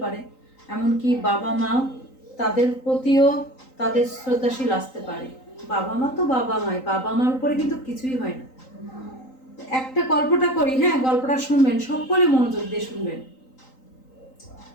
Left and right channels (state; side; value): late; right; 3.9 ms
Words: পারে, এমনকি বাবা মা তাদের প্রতিও তাদের শ্রদ্ধাশীল আসতে পারে। বাবা মা তো বাবা মাই, বাবা মার উপরে কিন্তু কিছুই হয় না। একটা গল্পটা করি, হ্যাঁ, গল্পটা শুনবেন, সকলে মনোযোগ দিয়ে শুনবেন।